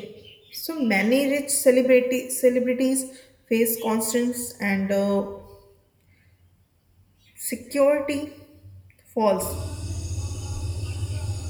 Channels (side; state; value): both; identical; correlation 1.00